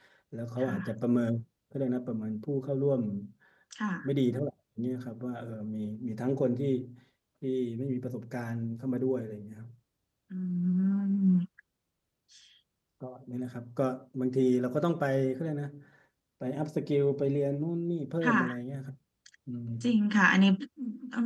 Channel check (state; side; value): identical; both; correlation 1.00